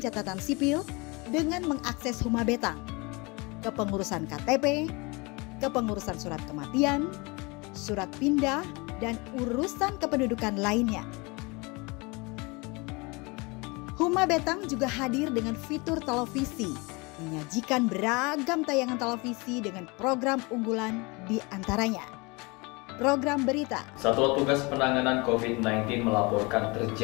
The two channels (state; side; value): quieter; right; 27.2 dB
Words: sipil dengan mengakses Huma Betang, kepengurusan KTP, kepengurusan surat kematian, surat pindah, dan urusan kependudukan lainnya. Huma Betang juga hadir dengan fitur televisi, menyajikan beragam tayangan televisi dengan program unggulan di antaranya program berita. Satuan Tugas Penanganan COVID-19 melaporkan